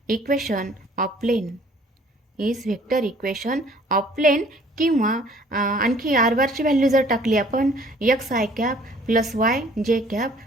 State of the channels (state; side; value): normal; both; correlation 0.56